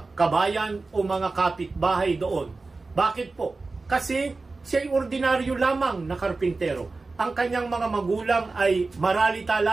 kabayan o mga kapitbahay doon. Bakit po? Kasi siya ay ordinaryo lamang na karpintero. Ang kanyang mga magulang ay maralita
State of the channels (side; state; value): left; quieter; 3.7 dB